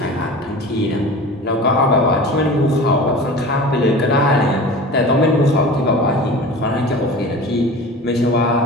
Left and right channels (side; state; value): both; normal; correlation 0.36